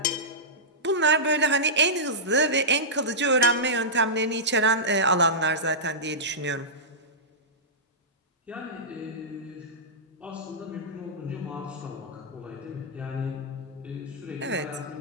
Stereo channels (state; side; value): normal; both; correlation -0.14